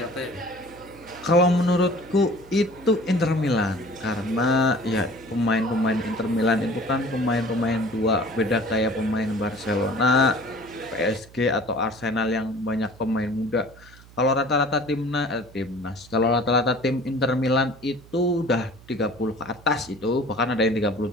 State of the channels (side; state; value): right; noise; hum, 22 dB below the sound